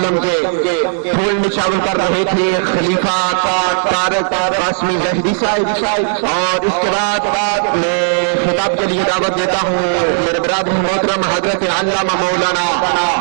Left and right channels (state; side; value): silent; left; digital silence